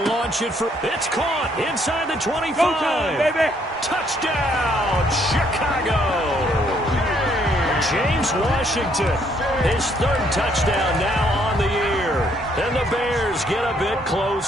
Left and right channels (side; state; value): both; normal; correlation 0.68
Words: launch it for... It's caught inside the 25. Go time, baby. Touchdown, Chicago. James Washington, his 3rd touchdown now on the year. And the Bears get a bit